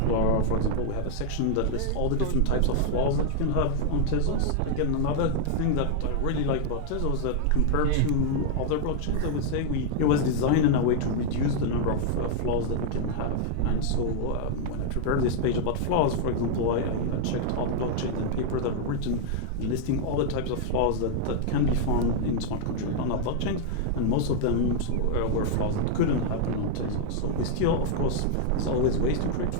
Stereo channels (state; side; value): different; both; correlation -0.01